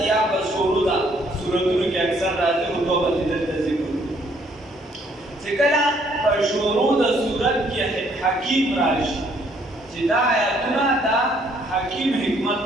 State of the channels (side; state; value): both; normal; correlation 0.66